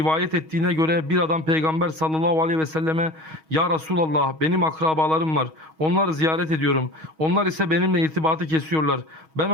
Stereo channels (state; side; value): late; left; 6.3 ms